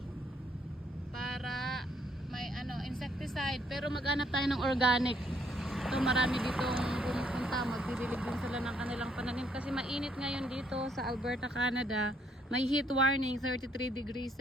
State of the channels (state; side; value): normal; both; correlation 0.69